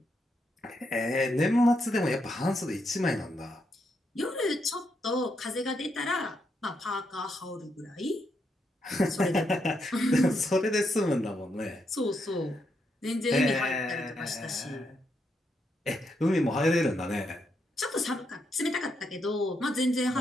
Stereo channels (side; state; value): both; normal; correlation 0.80